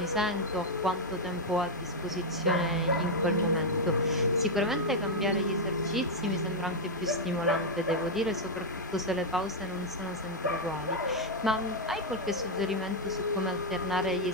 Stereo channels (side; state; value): both; normal; correlation -0.01